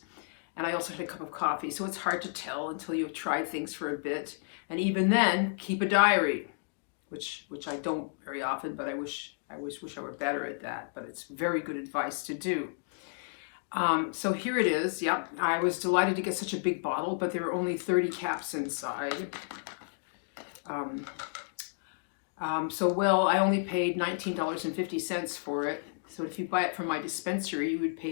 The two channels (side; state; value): right; silent; digital silence